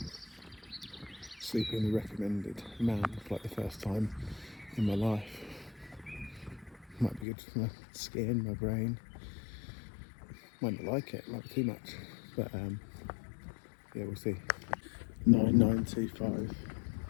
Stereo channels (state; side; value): drops out; right; at 7.2 s